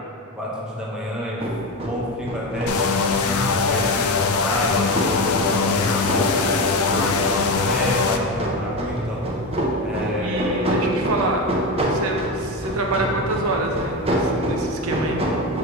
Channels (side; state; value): both; normal; correlation 0.19